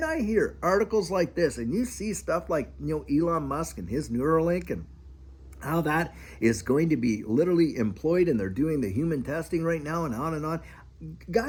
I hear articles like this, and you see stuff like, Elon Musk and his Neuralink, and how that is going to be literally employed, and they're doing the human testing right now, and on and on.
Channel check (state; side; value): identical; both; correlation 1.00